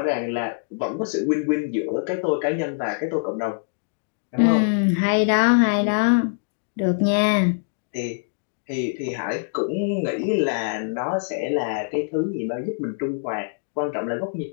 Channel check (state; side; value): silent; right; digital silence